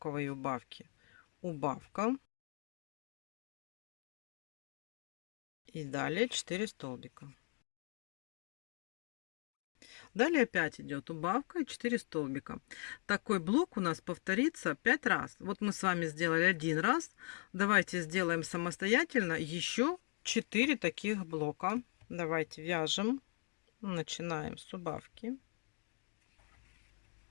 убавки. Убавка. И далее 4 столбика. Далее опять идет убавка и 4 столбика. Такой блок у нас повторится 5 раз. Вот мы с вами сделали один раз. Давайте сделаем самостоятельно еще 4 таких блока. Давайте вяжем. Начинаем с убавки.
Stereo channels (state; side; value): quieter; right; 39.1 dB